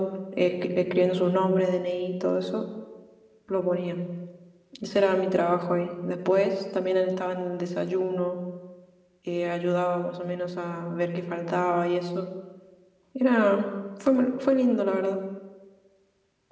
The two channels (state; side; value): identical; both; correlation 1.00